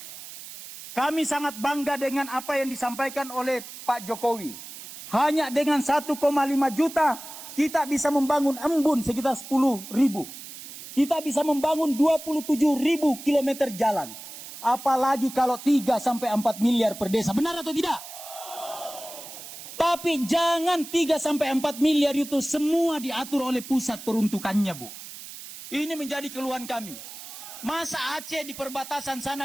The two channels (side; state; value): right; noise; hiss, 13 dB below the sound